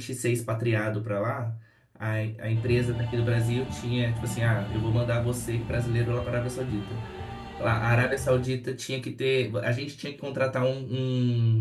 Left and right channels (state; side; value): identical; both; correlation 1.00